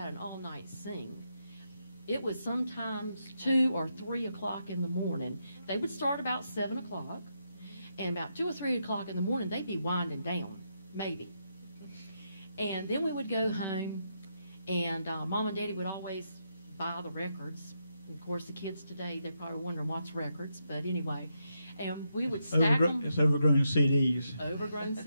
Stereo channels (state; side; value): inverted; both; correlation -0.82